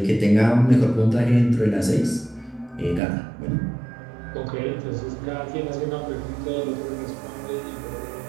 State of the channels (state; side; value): drops out; left; at 3.0 s